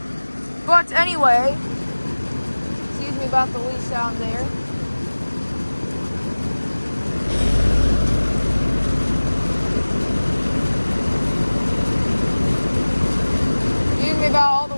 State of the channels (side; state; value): both; inverted; correlation -1.00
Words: But anyway, excuse me about the leaf sound there. Excuse me about all